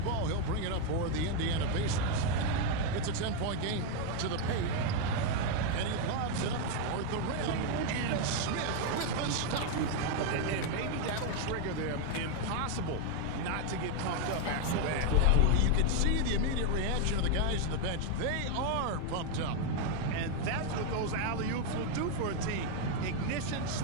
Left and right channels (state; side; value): different; both; correlation 0.01